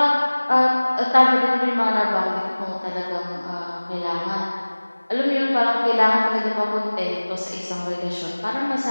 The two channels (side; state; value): both; inverted; correlation -1.00